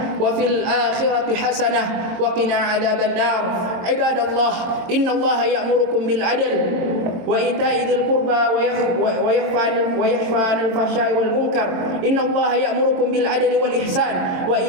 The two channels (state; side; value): late; left; 22 ms